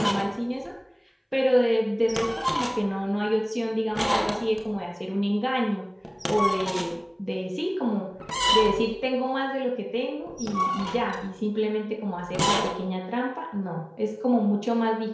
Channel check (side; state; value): both; identical; correlation 1.00